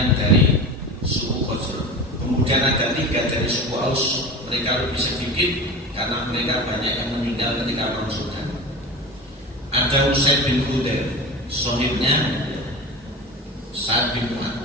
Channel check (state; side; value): normal; both; correlation 0.31